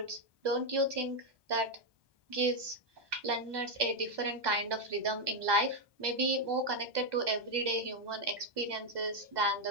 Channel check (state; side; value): late; left; 1.2 ms